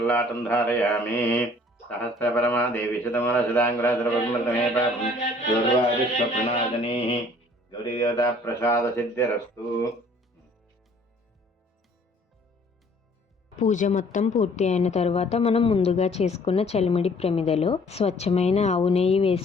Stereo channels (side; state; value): both; normal; correlation 0.57